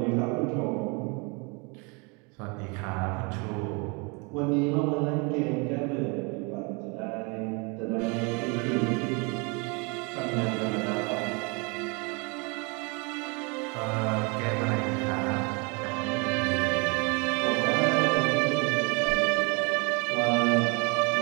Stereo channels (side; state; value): left; quieter; 31.1 dB